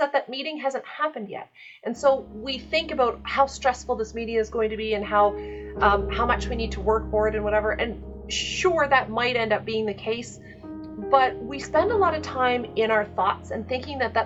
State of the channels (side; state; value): both; identical; correlation 1.00